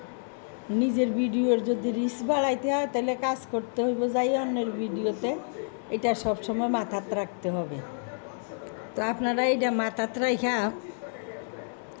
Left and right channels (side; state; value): right; silent; digital silence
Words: নিজের ভিডিওর যদি রিচ বাড়াইতে হয় তাহলে কাজ করতে হইব যাই অন্যের ভিডিওতে। এটা সবসময় মাথাত রাখতে হবে। তো আপনারা এটা মাথাত রাখা